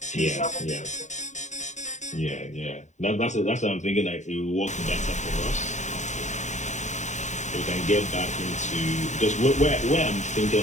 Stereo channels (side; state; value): right; late; 0.34 ms